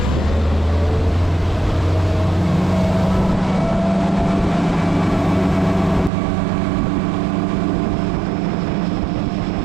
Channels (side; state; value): left; drops out; at 6.1 s